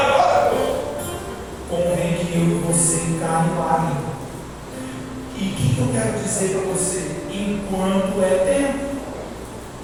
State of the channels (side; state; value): both; identical; correlation 1.00